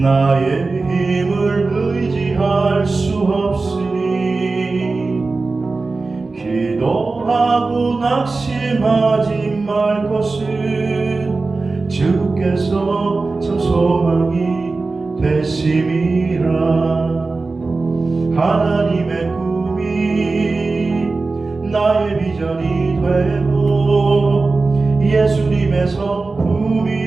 힘을 의지할 수 없으니 기도하고 낙심하지 말 것은 주께서 참 소망이 되심이라. 하나님의 꿈이 나의 비전이 되고 예수님의 성품이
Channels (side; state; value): left; quieter; 3.7 dB